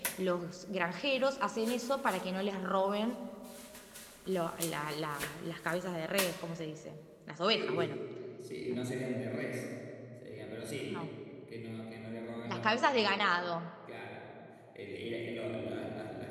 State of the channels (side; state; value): both; identical; correlation 1.00